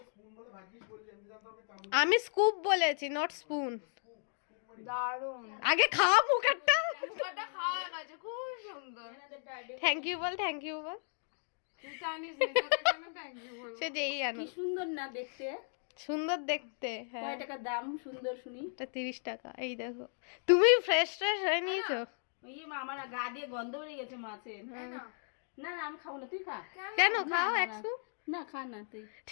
আমি স্কুপ বলেছি, নট স্পুন। দারুণ, আগে খা মুখটা। মুখটা খাওয়া গেছে, খুব সুন্দর। থ্যাংক ইউ বল, থ্যাংক ইউ বল। তুই জানিস না তোকে কেন থ্যাংক ইউ বলবো? সে যেই আনো। কি সুন্দর না দেখতে, সুন্দর দেখতে। হ্যাঁ, কয় টাকা দাম সুন্দর শুনি। এটা 30 টাকা। এই দেখো, তুমি ফ্রেশ হয়ে নিয়েছো। ইয়ে মা, আমার গা দিয়ে গন্ধ বেরিয়ে গেছে মাছের। না না আমি খাবো না, তুই খা। কেন খাও এক স্কুপ? না খা না তুই।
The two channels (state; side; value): silent; right; 54 dB below the other